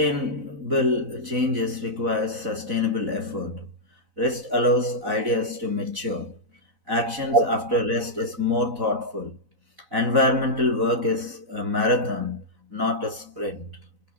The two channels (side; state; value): left; late; 4.0 ms